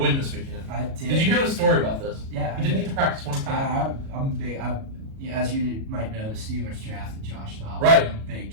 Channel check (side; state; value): left; late; 37 ms